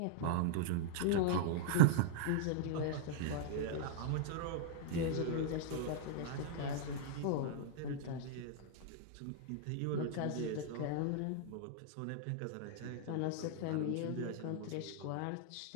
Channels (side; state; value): both; different; correlation -0.01